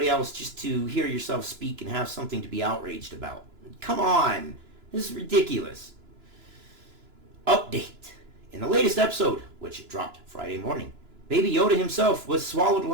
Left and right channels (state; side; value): late; left; 2.9 ms